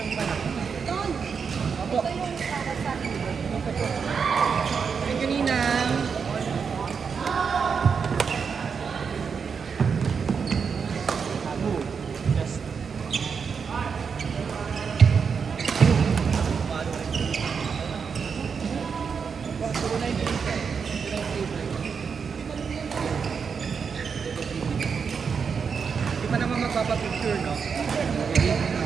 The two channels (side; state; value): left; quieter; 6.0 dB